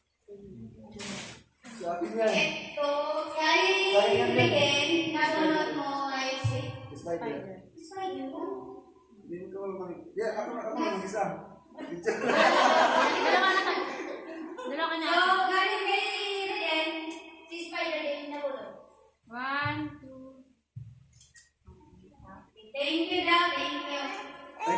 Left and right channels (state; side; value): identical; both; correlation 1.00